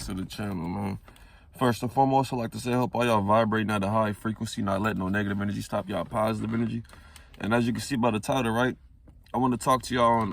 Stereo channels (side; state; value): both; identical; correlation 1.00